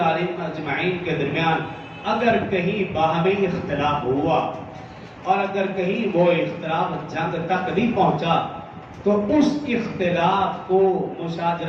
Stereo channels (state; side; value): identical; both; correlation 1.00